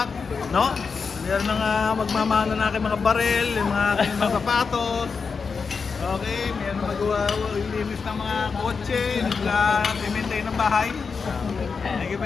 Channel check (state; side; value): quieter; right; 5.2 dB